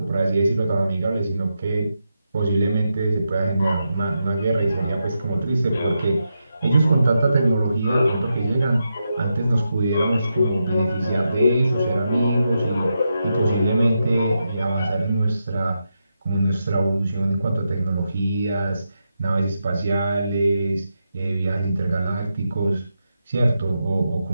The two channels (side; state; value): both; inverted; correlation -0.86